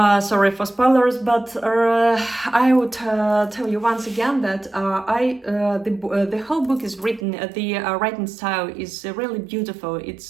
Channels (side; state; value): left; drops out; at 7.2 s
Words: for spoilers, but I would tell you once again that the whole book is written. The writing style is really beautiful.